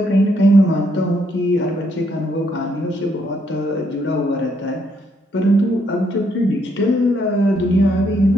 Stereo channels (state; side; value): normal; both; correlation 0.73